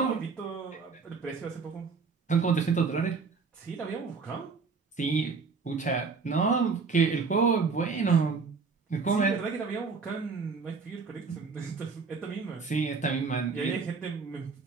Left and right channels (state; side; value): quieter; left; 4.9 dB